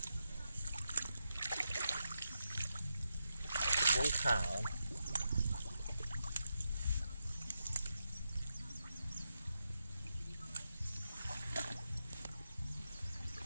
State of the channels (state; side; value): inverted; both; correlation -0.86